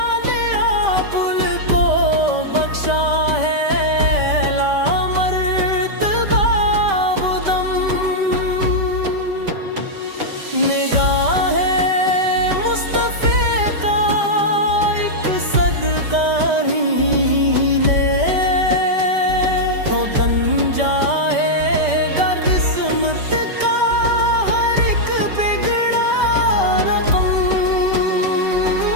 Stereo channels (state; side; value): late; left; 5.1 ms